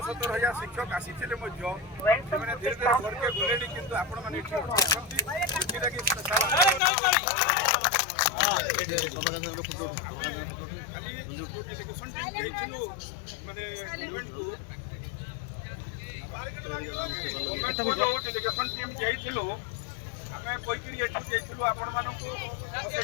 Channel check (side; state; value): right; drops out; at 6.8 s